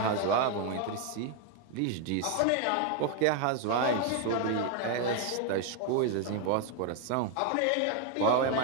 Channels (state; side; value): different; both; correlation 0.01